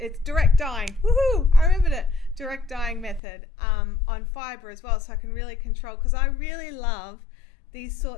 direct dyeing. Woohoo! I remembered it. Direct dyeing method on fibre as well, so I can really control, because I really love these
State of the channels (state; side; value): drops out; right; at 3.2 s